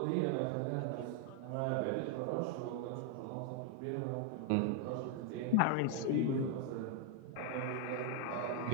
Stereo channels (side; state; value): both; different; correlation 0.00